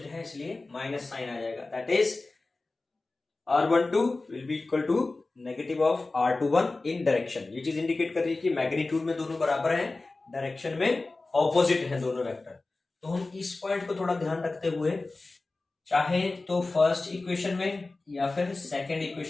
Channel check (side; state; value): right; quieter; 3.3 dB